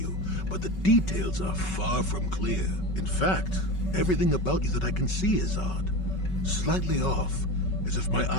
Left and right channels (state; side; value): late; right; 5.3 ms